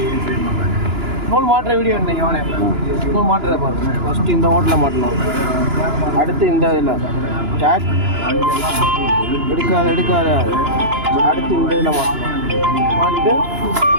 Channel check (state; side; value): late; left; 2.9 ms